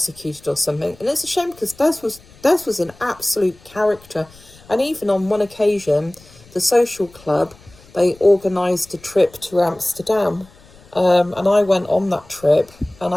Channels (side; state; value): left; noise; rumble, 26 dB below the sound